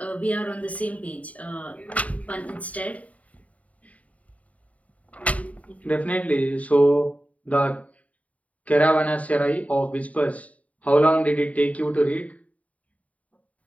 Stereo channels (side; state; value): right; late; 0.069 ms